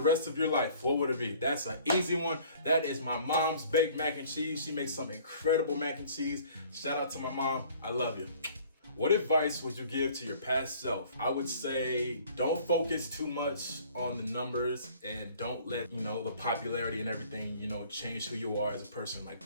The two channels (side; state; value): both; inverted; correlation -0.53